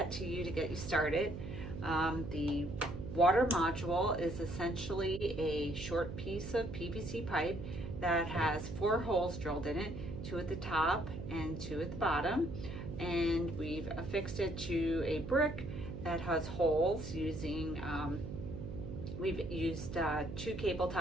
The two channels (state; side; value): noise; right; hum, 8 dB below the sound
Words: to you to get you started. The water module is essentially a short piece of PVC pipe that has 4 holes drilled in it, 2 at the top and 2 at the bottom, and we've affixed it to a brick that has holes using, we've used 2 cable